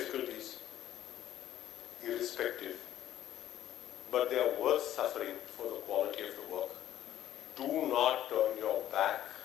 irrespective, but they are worth suffering for the quality of the work. Do not turn your back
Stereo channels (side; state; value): right; quieter; 12.2 dB